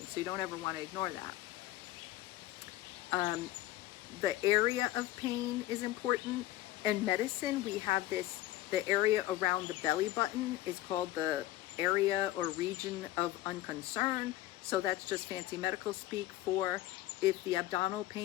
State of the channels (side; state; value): right; quieter; 15.1 dB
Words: So you don't ever want to ignore that. The area of pain is important. In medicine, we have the area around the belly button is called the area or region of unconcern. So that's just fancy medical speak for if the abdominal